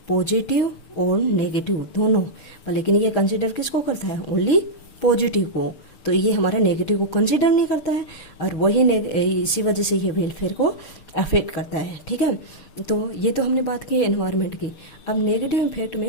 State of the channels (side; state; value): right; late; 6.7 ms